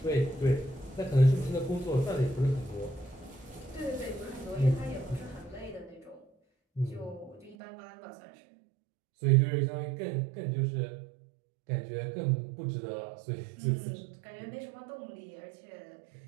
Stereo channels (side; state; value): left; drops out; at 7.6 s